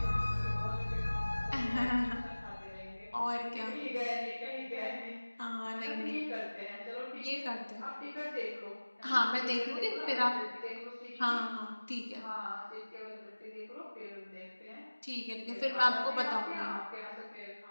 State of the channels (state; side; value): inverted; both; correlation -1.00